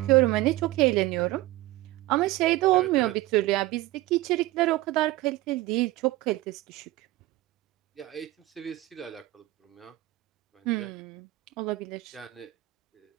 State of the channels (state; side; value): quieter; left; 18.1 dB